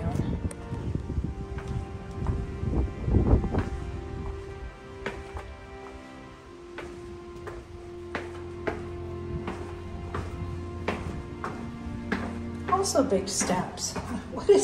Also big steps. What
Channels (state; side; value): identical; both; correlation 1.00